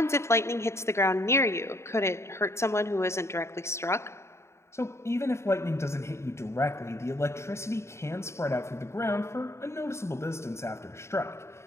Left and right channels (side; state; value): right; late; 0.13 ms